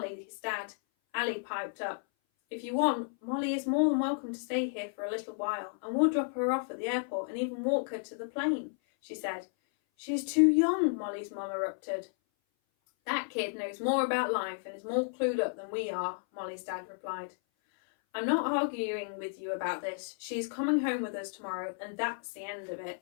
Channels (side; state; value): right; silent; 56 dB below the other